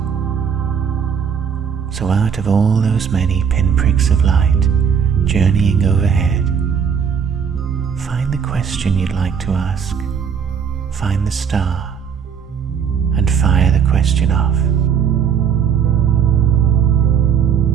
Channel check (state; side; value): quieter; left; 7.2 dB